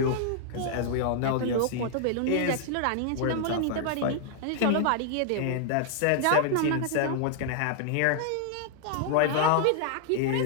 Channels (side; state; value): both; different; correlation -0.01